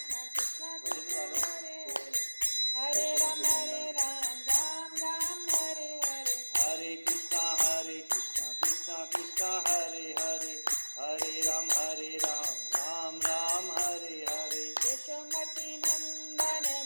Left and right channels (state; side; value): inverted; both; correlation -1.00